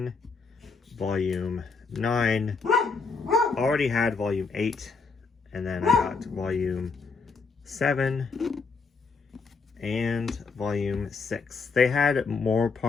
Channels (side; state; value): right; quieter; 4.6 dB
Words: volume 9, already had volume 8, and then I got volume 7 and volume 6. They had more